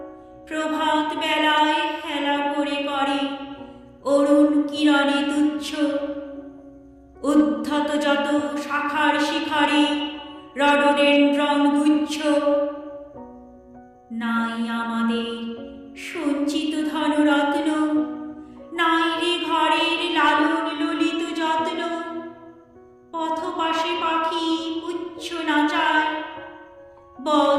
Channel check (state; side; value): identical; both; correlation 1.00